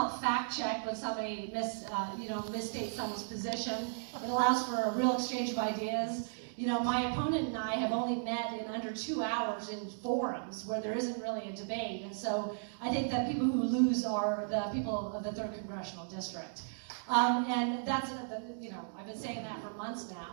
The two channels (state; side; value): silent; left; digital silence